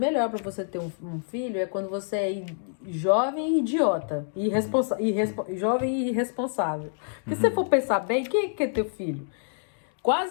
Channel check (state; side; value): silent; right; digital silence